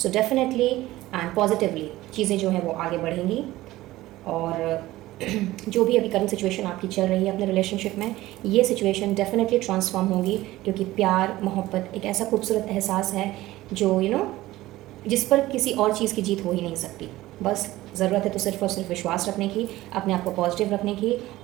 डेफिनेटली एंड पॉजिटिवली चीज़ें जो हैं वो आगे बढ़ेंगी और जो भी अभी करंट सिचुएशन आपकी चल रही है अपने रिलेशनशिप में, ये सिचुएशन डेफिनेटली ट्रांसफॉर्म होगी, क्योंकि प्यार मोहब्बत एक ऐसा खूबसूरत एहसास है जो जिस पर किसी और चीज़ की जीत हो ही नहीं सकती। बस ज़रूरत है तो सिर्फ और सिर्फ विश्वास रखने की, अपने आप को पॉजिटिव रखने की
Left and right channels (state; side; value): quieter; left; 16.9 dB